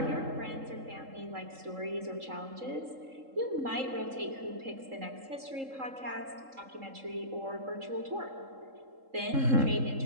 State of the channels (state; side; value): late; left; 3.7 ms